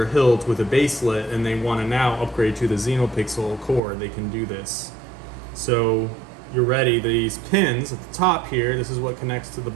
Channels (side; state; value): left; drops out; at 3.8 s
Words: hilt with a baselet and they want to now upgrade to the Xenopixel core. They can do this. So you're ready. These pins at the top here, this is what connects to the